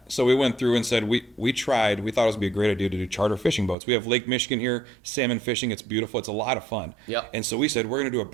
So we went through and said we thought it would be a great idea to do charter fishing boats. We have Lake Michigan here, salmon fishing. It's beautiful. It's a lot of fun. Yep. And so we said we're going to do a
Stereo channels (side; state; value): left; drops out; at 3.8 s